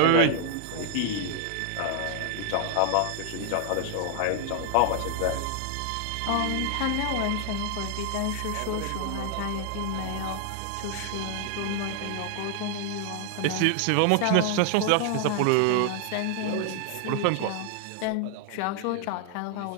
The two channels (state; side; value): different; both; correlation 0.00